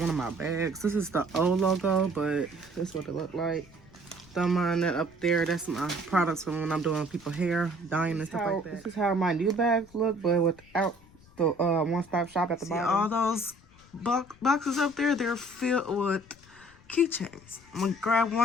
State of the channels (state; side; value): noise; left; rumble, 25 dB below the sound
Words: of my bags. This is the old logo, but this is what it looked like. Don't mind that up there. That's my products from when I'm doing people's hair, dyeing and stuff like that. This is how my new bags look, but without the one-stop shop at the bottom. All those boxes up there, they're filled with keychains. I'm gonna grab